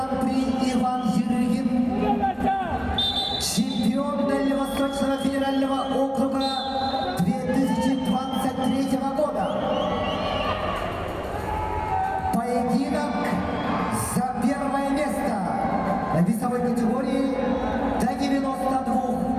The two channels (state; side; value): identical; both; correlation 1.00